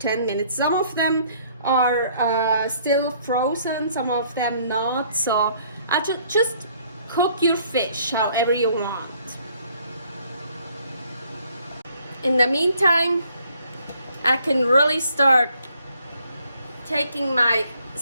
minutes. Some of them are still frozen, some of them not. So I just cook your fish however you want. In the meantime, I can really start taking my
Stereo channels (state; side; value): inverted; both; correlation -0.63